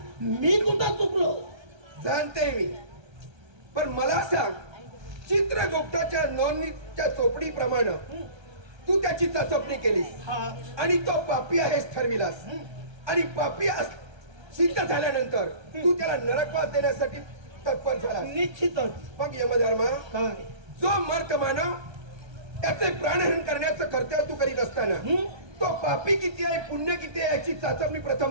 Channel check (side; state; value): left; late; 1.3 ms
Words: मी कुठं चुकलो? जाणते मी, पण मला सांग, चित्रगुप्ताच्या नोंदणीच्या चोपडीप्रमाणे तू त्याची चाचपणी केलीस आणि तो पापी आहेस ठरविलास आणि पापी सिद्ध झाल्यानंतर तू त्याला नरकवास देण्यासाठी तत्पर झाला. निश्चितच. मग यमधर्मा, काय जो मर्त मानव त्याचे प्राणहरण करण्याचं कर्तव्य तू करीत असताना तो पापी किती आहे, पुण्य किती आहे याची चाचपणी